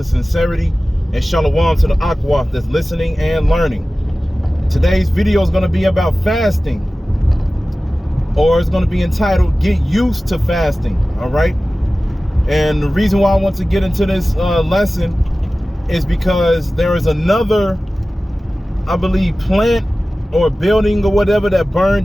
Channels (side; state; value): both; normal; correlation 0.96